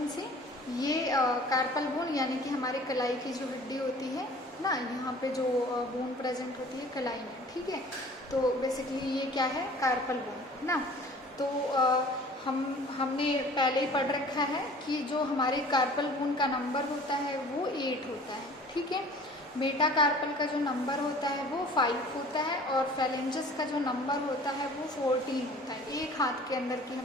से। ये कार्पल बोन यानी कि हमारे कलाई की जो हड्डी होती है ना, यहाँ पे जो बोन प्रेजेंट होती है कलाई में, ठीक है। तो बेसिकली ये क्या है, कार्पल बोन ना। तो हमने पहले ही पढ़ रखा है कि जो हमारे कार्पल बोन का नंबर होता है वो 8 होता है, ठीक है। मेटाकार्पल का जो नंबर होता है वो 5 होता है और फेलेंजेस का जो नंबर होता है वो 14 होता है। एक हाथ के अंदर की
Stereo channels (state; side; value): normal; both; correlation 0.47